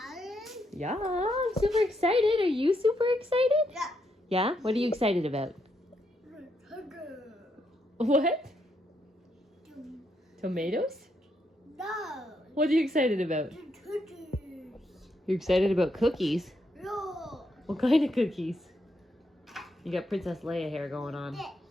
yeah, I'm super excited. Are you super excited? Yeah. Yeah? What are you excited about? Sugar. What? Tomatoes? No. What are you excited about? The cookies. You're excited about cookies? No. What kind of cookies? You got Princess Leia hair going on. This.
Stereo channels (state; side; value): normal; both; correlation 0.78